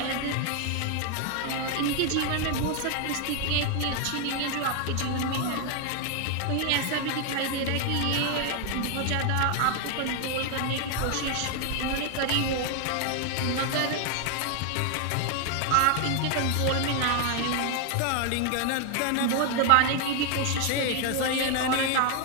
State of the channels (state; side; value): different; both; correlation 0.01